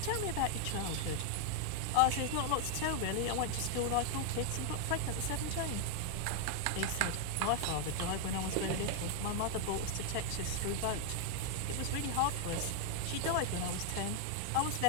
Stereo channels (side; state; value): both; different; correlation 0.00